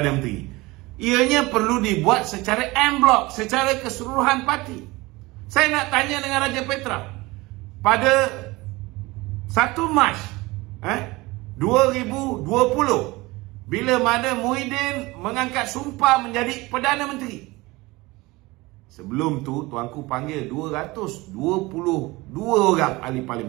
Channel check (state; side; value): quieter; left; 21.8 dB